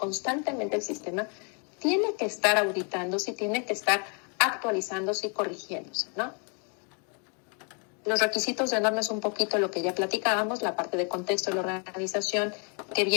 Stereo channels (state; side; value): quieter; right; 38.6 dB